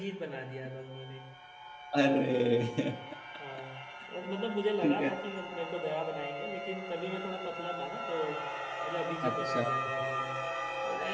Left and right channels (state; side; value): identical; both; correlation 1.00